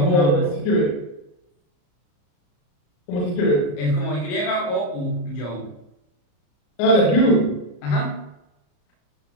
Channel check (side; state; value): right; late; 34 ms